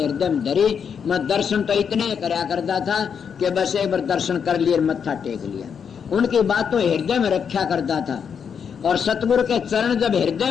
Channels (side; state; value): right; quieter; 7.1 dB